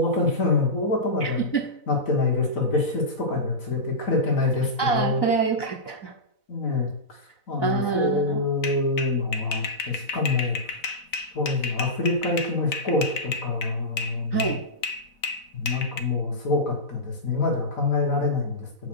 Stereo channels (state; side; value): late; right; 4.0 ms